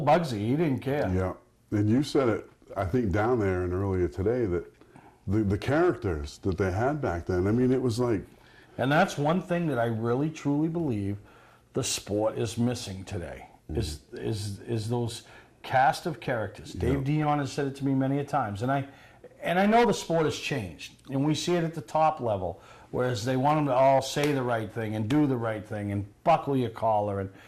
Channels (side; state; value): both; identical; correlation 1.00